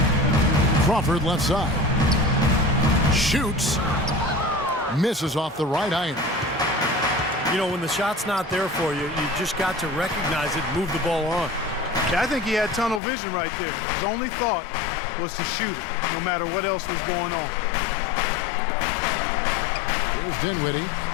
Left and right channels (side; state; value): right; drops out; at 13.0 s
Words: Crawford left side. Shoots. Misses off the right iron. You know, when the shot's not there for you, you just got to recognize it and move the ball on. Yeah, I think he had tunnel vision right there. His only thought was to shoot it, no matter what else was going on. Here's Dinwiddie.